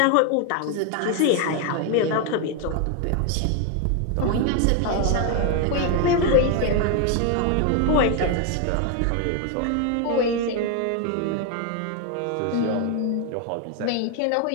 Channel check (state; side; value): different; both; correlation 0.01